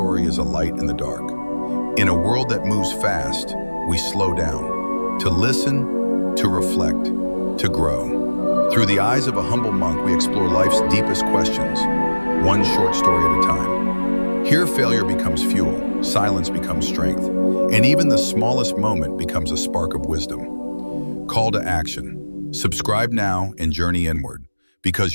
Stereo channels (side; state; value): both; inverted; correlation -1.00